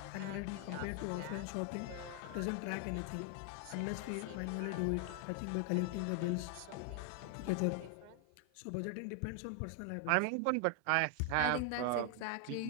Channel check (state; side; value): different; both; correlation 0.00